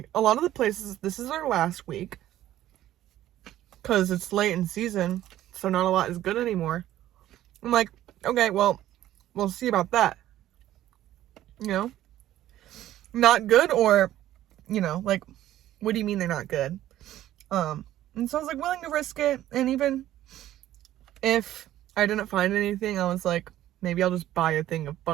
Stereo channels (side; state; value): left; quieter; 13.4 dB